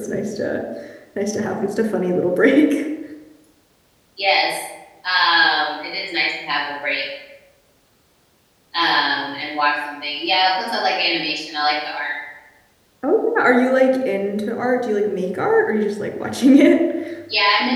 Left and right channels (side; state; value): both; identical; correlation 1.00